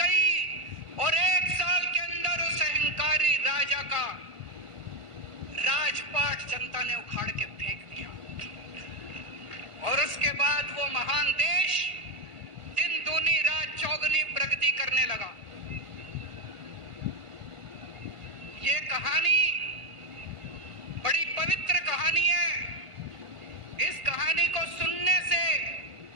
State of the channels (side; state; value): left; late; 1.4 ms